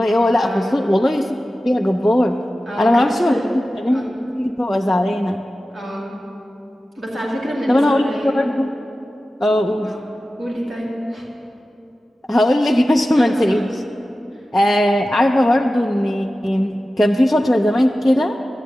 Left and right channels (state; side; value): normal; both; correlation 0.95